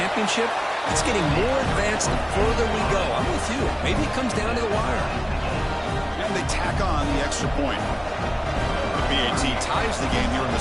it's getting more advanced the further we go. I'm with you. Maybe it comes down to the wire. And they tack on the extra point. BAT ties the game here in the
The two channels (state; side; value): identical; both; correlation 1.00